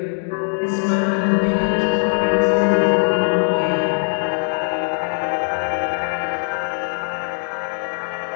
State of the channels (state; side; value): silent; right; 65 dB below the other